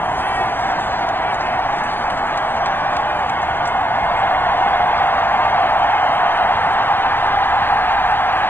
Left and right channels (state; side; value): late; right; 0.10 ms